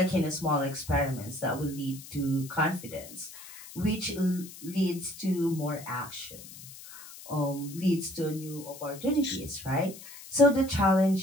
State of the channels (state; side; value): noise; left; hiss, 16 dB below the sound